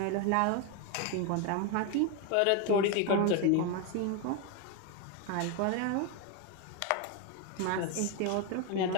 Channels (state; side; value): different; both; correlation 0.01